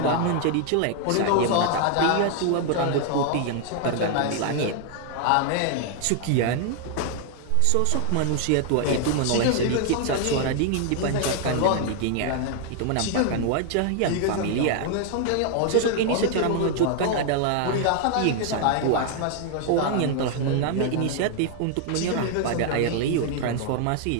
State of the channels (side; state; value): both; different; correlation 0.00